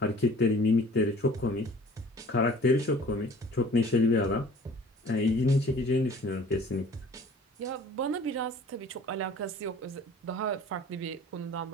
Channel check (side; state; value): both; normal; correlation 0.48